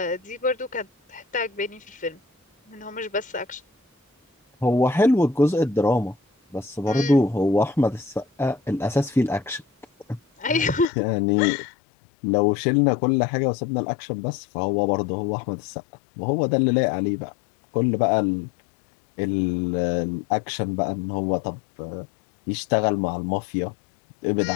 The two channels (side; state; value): right; drops out; at 10.9 s